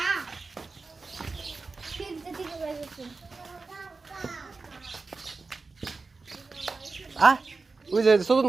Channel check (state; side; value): quieter; left; 4.0 dB